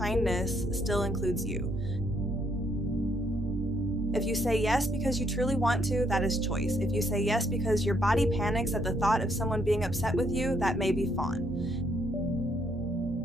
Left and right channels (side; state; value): both; normal; correlation 0.71